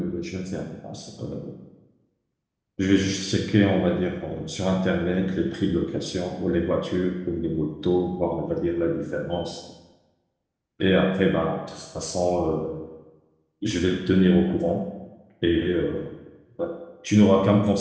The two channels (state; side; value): identical; both; correlation 1.00